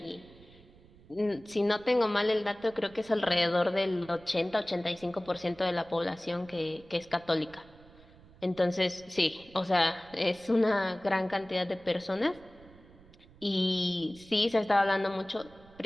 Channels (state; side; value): noise; right; rumble, 24 dB below the sound